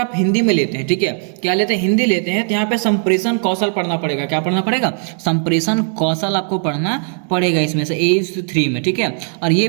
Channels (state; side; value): silent; left; 55 dB below the other